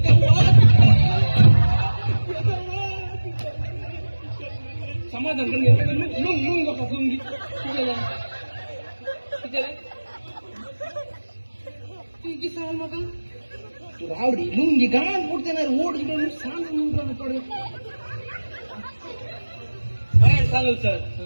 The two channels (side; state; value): both; inverted; correlation -1.00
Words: समाधान करून लुंग बघा लुंगी की सराल म्हाका तू रावडी लुंगी गाण पडते ना ओढ इकडे सांग पडे. काय सांगू सर